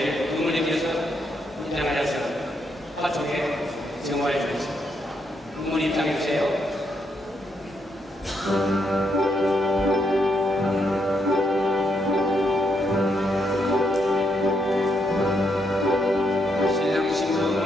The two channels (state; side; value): normal; both; correlation 0.77